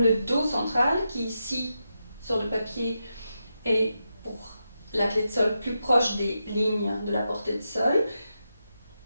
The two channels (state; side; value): inverted; both; correlation -0.87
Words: le Do central, qui ici sur le papier est pour la clé de sol plus proche des lignes de la portée de sol,